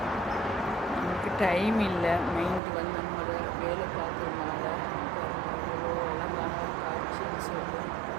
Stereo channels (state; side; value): drops out; left; at 2.6 s